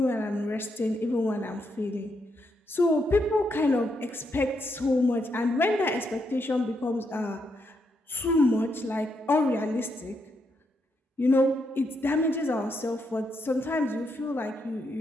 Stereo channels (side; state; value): both; normal; correlation 0.80